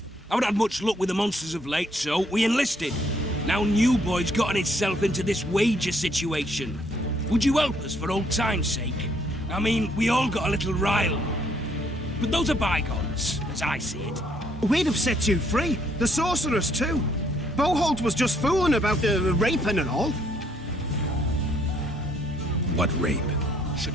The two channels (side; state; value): both; normal; correlation 0.68